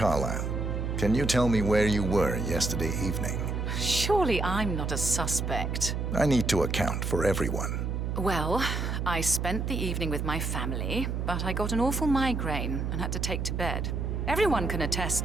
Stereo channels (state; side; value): noise; right; hum, 1 dB below the sound